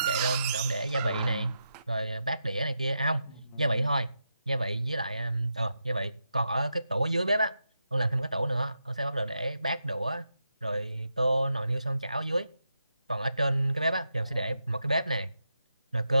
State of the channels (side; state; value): both; inverted; correlation -0.86